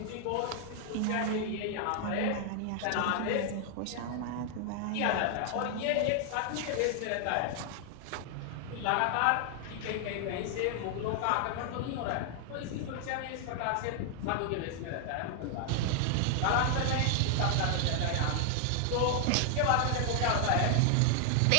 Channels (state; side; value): different; both; correlation 0.00